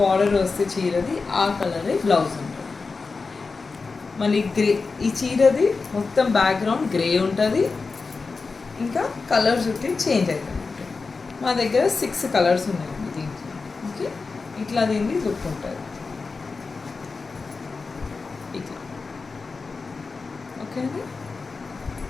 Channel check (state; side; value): quieter; right; 4.3 dB